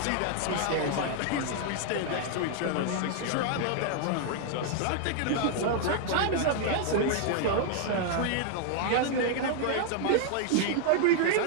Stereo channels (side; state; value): both; different; correlation 0.00